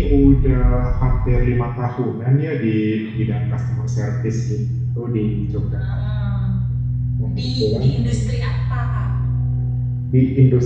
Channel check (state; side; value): identical; both; correlation 1.00